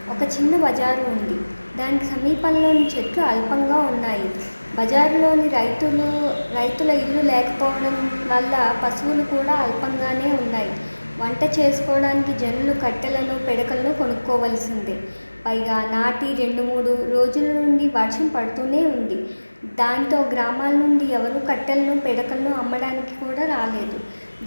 ఒక చిన్న బజారు ఉంది. దానికి సమీపంలోని చెట్లు అల్పంగా ఉన్నాయి. బజారులోని రైతుల ఇల్లు లేకపోవడం వల్ల పశువులు కూడా అల్పంగానే ఉన్నాయి. వంట చేసుకోవడానికి జనులు కట్టెలను, పిడకలను కొనుక్కోవలసిందే. పైగా నాటి 2-3 రోజుల నుండి వర్షం పడుతూనే ఉంది. దాంతో గ్రామాల నుండి ఎవరు కట్టెలను, పిడకలను అమ్మడానికి కూడా రాలేదు.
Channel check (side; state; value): both; inverted; correlation -1.00